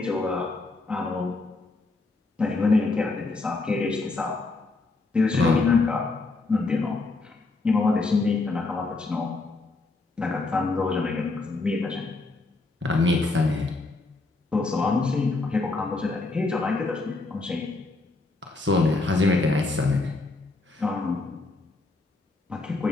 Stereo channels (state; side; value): quieter; right; 3.4 dB